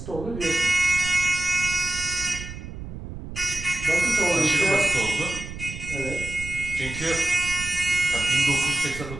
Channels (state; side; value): noise; right; rumble, 10 dB below the sound